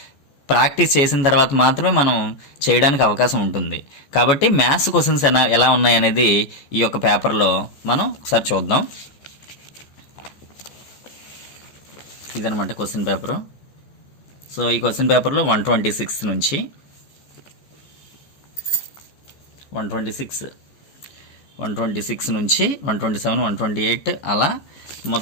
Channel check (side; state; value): right; late; 14 ms